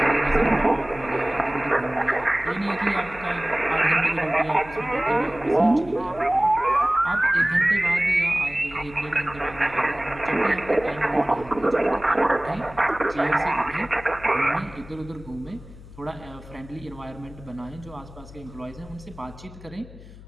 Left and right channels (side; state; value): left; noise; hum, 18 dB below the sound